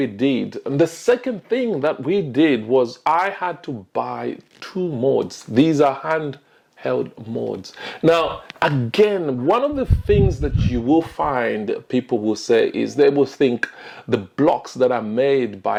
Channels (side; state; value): both; identical; correlation 1.00